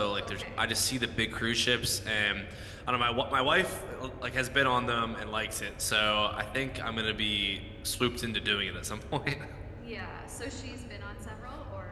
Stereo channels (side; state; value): both; identical; correlation 1.00